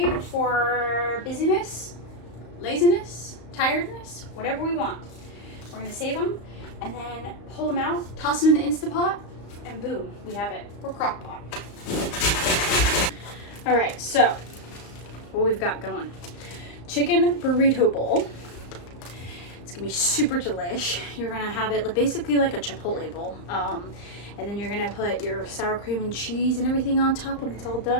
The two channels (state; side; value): late; right; 35 ms